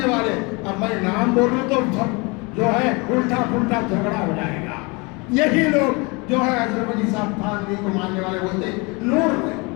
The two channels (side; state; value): right; quieter; 28.2 dB